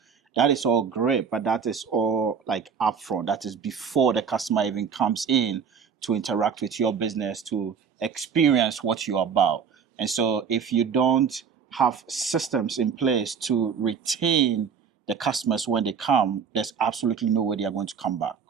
that is all great, but that is all like upfront. That is before the customer even comes in to interact with your business, to experience what you're about. And so if you don't have systems in place to retain the customers when they come, there's absolutely no way they are going to come back,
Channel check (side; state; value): left; quieter; 6.6 dB